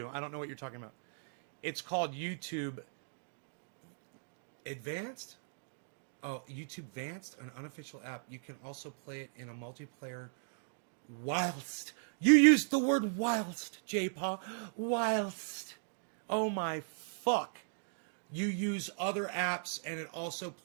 I don't know what you're talking about. It's called YouTube Advanced? Oh, YouTube Advanced, an unofficial app. You can also play it in a multiplayer whilst. You used the word whilst, J-Paw. Whilst. Oh my fuck. You use other apps and it also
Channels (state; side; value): silent; left; digital silence